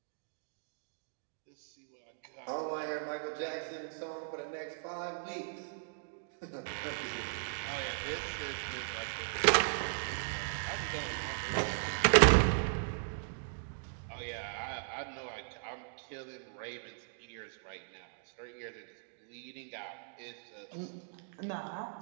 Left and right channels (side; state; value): left; silent; digital silence